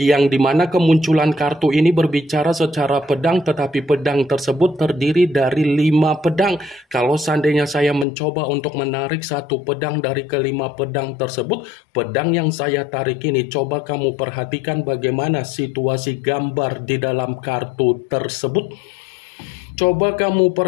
dimana kemunculan kartu ini berbicara secara pedang, tetapi pedang tersebut terdiri dari 5 pedang. Kalau seandainya saya mencoba untuk menarik satu pedang dari ke-5 pedang tersebut, pedang yang saya tarik ini, coba kamu perhatikan bagaimana situasi gambar di dalam kartu tersebut. Coba kamu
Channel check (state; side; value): drops out; right; at 8.1 s